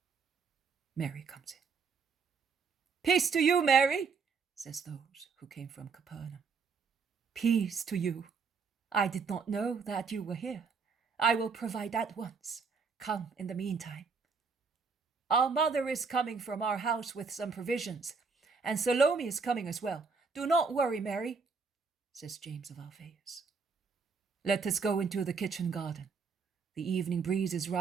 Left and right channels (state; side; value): quieter; left; 5.2 dB